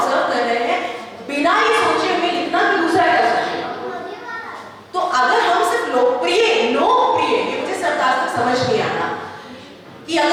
कर रहे हैं, बिना ये सोचे हमें लिखना कि दूसरा क्या सोचेगा। तो अगर हम सिर्फ लोकप्रिय, ये मुझे सरकार तक समझ नहीं आ रहा कि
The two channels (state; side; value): identical; both; correlation 1.00